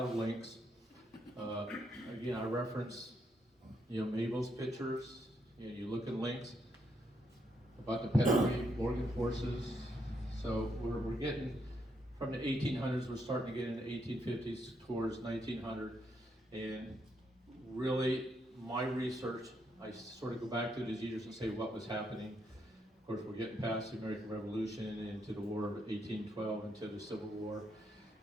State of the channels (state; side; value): normal; both; correlation 0.77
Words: of Links. Again, I reference, Mabel's pictures. You look at Links about the pedigree, Morgan horses. So we're getting from the 1800s. We're starting to get into 1850s towards 1900, and really, my research, I sort of go back to these years and say what was happening. Of course, we're getting past the American Revolution and into the War of 1812, into the Civil War,